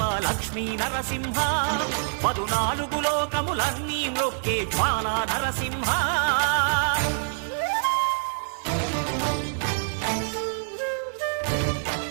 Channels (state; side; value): silent; left; digital silence